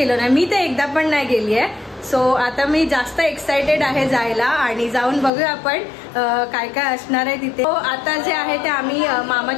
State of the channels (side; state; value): right; drops out; at 5.3 s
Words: नाही, मी तर एकदा पण नाही गेली आहे। सो आता मी जास्त एक्साइटेड आहे जायला आणि जाऊन बघूया आपण काय काय असणार आहे तिथे। आता जे आहे ते आम्ही